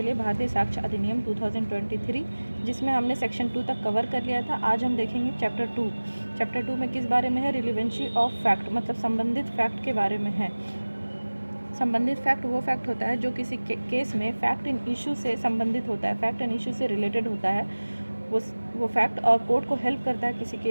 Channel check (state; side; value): inverted; both; correlation -1.00